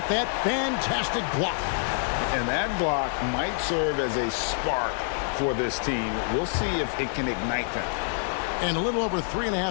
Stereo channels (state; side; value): silent; right; 60 dB below the other